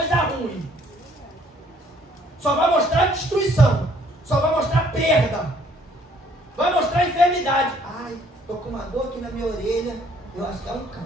ruim. Só vai mostrar destruição. Só vai mostrar perda. Vai mostrar enfermidade. Ai, estou com uma dor aqui na minha orelha. Eu acho que é um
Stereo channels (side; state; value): both; normal; correlation 0.62